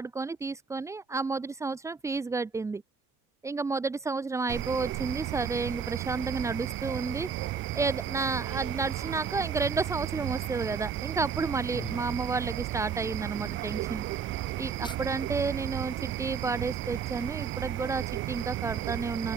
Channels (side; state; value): left; quieter; 5.3 dB